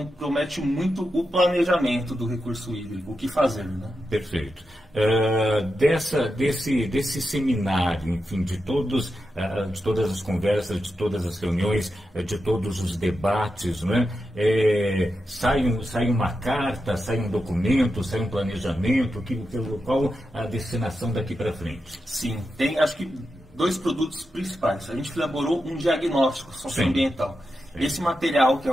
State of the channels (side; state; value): both; normal; correlation 0.89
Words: muito o planejamento do recurso hídrico, o que fazer, né? Perfeito. Desse seminário, enfim, de todas as conversas, de todas as reuniões, de todos os debates, né? Sai uma carta, sai um documento, sai um planejamento, qual a destinação daqui para frente? Sim, tem acho que 2 produtos principais. A gente elaborou um diagnóstico socioambiental. Esse material, que